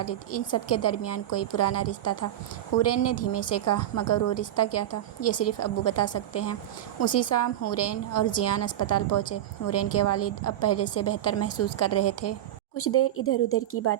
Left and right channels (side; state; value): left; quieter; 12.2 dB